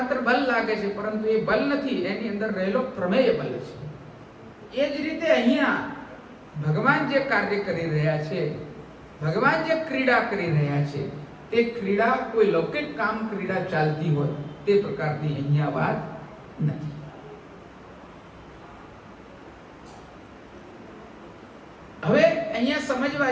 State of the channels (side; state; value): both; identical; correlation 1.00